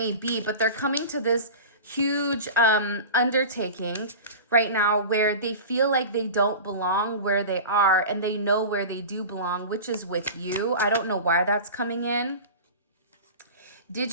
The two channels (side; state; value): both; inverted; correlation -0.32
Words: be. But they're coming to this huge undertaking right now where they feel like they don't belong where they are, and they know where they do belong, which is with you. I don't know why that's coming in. Did